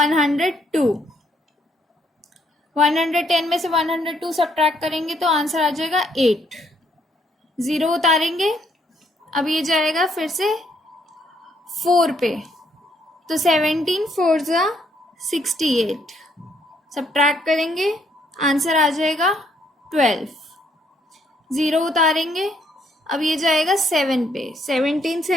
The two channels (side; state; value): both; normal; correlation 0.70